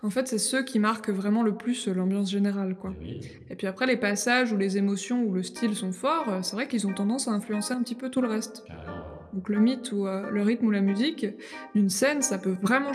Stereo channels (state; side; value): identical; both; correlation 1.00